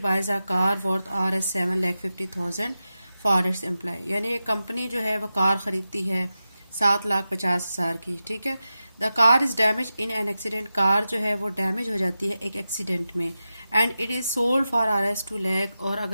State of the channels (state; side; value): inverted; both; correlation -0.92